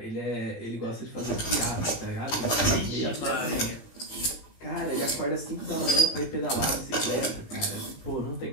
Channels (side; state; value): right; late; 18 ms